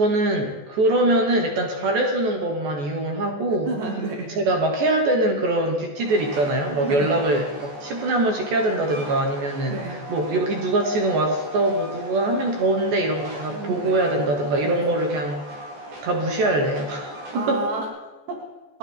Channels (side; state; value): left; late; 14 ms